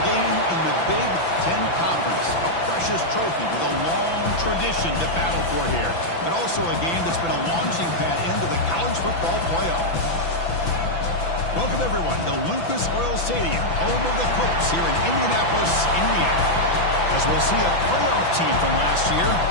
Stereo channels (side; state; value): right; late; 6.0 ms